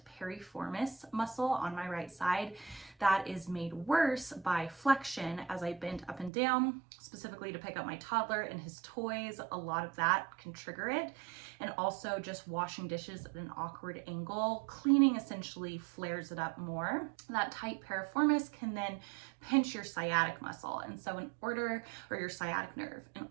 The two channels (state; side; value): drops out; left; at 6.3 s